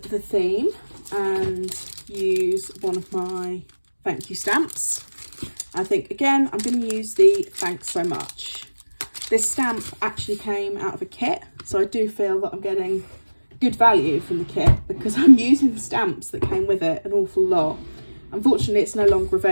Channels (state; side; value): inverted; both; correlation -1.00